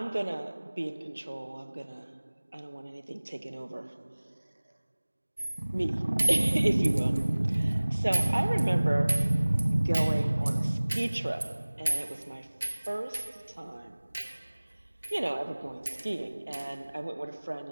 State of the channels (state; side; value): inverted; both; correlation -1.00